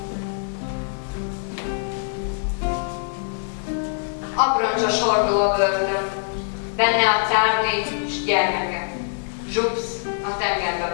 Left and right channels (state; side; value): silent; right; digital silence